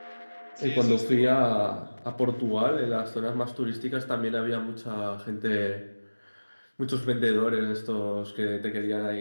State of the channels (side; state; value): both; inverted; correlation -1.00